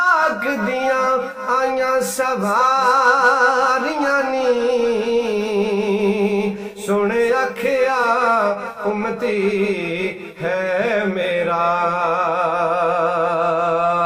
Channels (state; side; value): identical; both; correlation 1.00